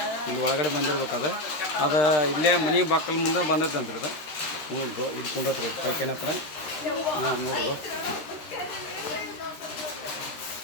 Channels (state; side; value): late; right; 13 ms